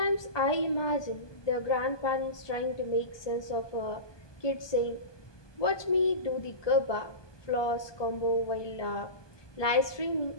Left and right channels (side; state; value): right; late; 1.2 ms